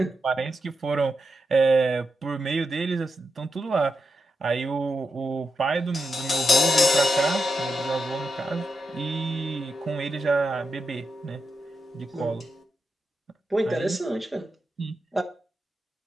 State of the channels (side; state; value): both; normal; correlation 0.86